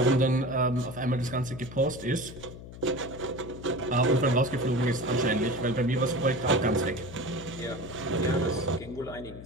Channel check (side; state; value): left; noise; hum, 14 dB below the sound